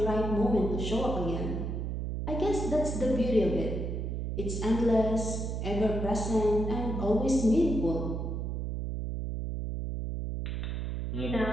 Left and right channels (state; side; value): noise; right; hum, 3 dB below the sound